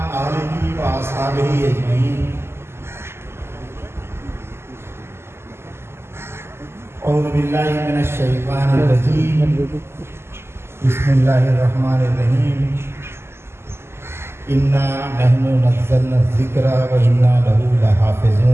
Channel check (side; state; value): left; late; 0.12 ms